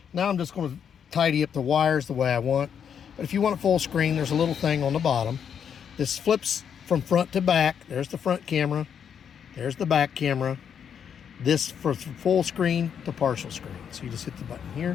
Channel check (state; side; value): quieter; right; 7.9 dB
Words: Now I'm just going to tidy up the wires the way I want. But if you want it full screen, there's a little thing on the bottom. This flips from front to back. There's the front camera. There's the back camera. This for full screen to partial screen. So you just hit the button